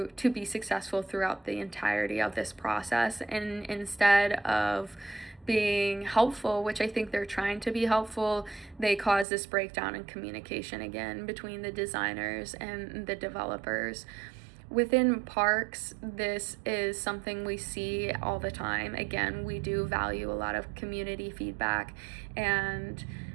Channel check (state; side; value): drops out; left; at 9.2 s